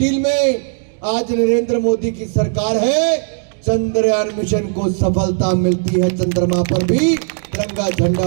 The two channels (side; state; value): left; silent; digital silence